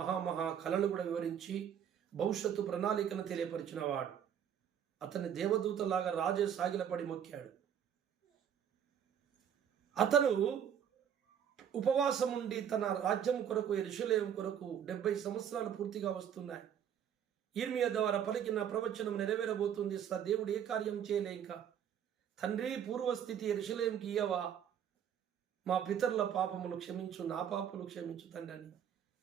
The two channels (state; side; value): quieter; left; 8.9 dB